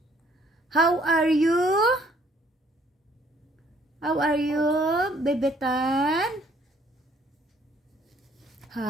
How are you? How are you, Bebetan?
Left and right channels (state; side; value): normal; both; correlation 0.62